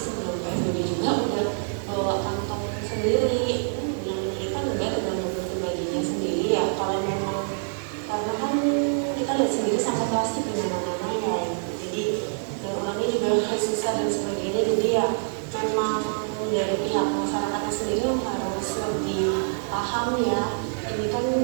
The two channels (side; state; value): left; silent; digital silence